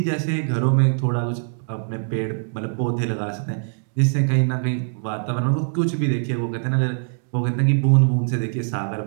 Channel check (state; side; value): silent; left; digital silence